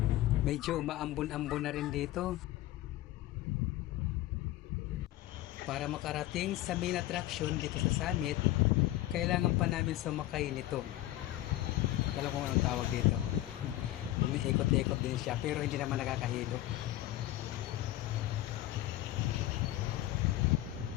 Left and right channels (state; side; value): quieter; right; 15.4 dB